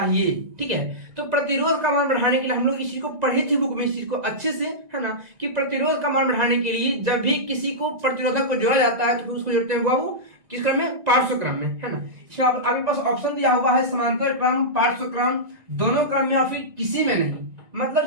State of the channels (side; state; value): left; late; 1.9 ms